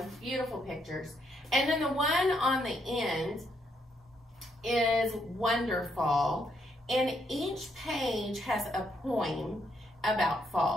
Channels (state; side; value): normal; both; correlation 0.75